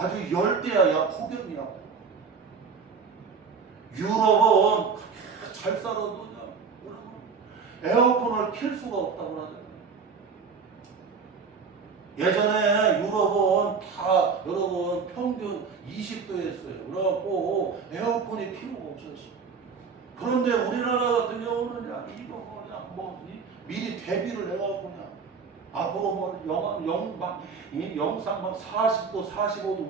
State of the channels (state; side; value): quieter; left; 5.5 dB